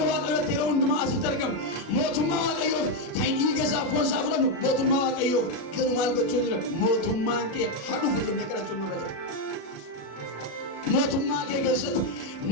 waaqayyootti yeroo hundumaa asitti argamu. Mootummaa waaqayyoof kan inni dhiiga isaa foon isaa fudhannu. Mootummaa waaqayyoof garuu maal gochuu jira? Mootummaan kee hadhuuf jennee kadhachuun nurra jira. Mootummaa kee keessatti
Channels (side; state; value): right; late; 35 ms